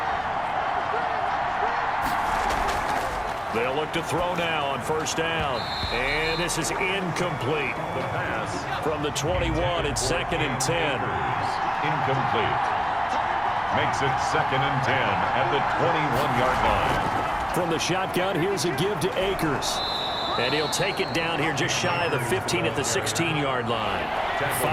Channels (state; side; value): identical; both; correlation 1.00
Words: They'll look to throw now on first down. And this is incomplete. The pass from the 21, it's 2nd and 10. Incomplete. Makes it 2nd and 10 at the 21-yard line. From the shotgun, here's a give to Akers. And he'll take it down here just shy of the 15 at the 16-yard line.